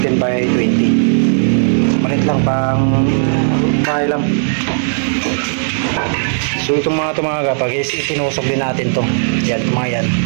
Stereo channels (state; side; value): silent; left; digital silence